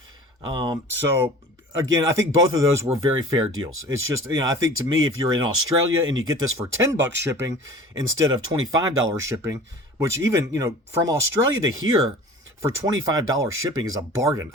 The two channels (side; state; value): both; normal; correlation 0.42